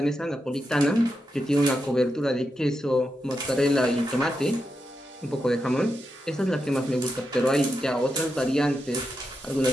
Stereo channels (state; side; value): normal; both; correlation 0.86